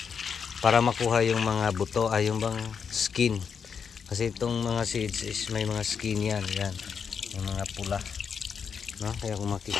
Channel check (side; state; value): right; quieter; 6.5 dB